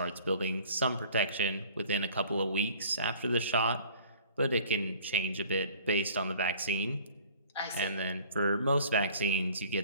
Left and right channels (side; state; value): both; inverted; correlation -0.50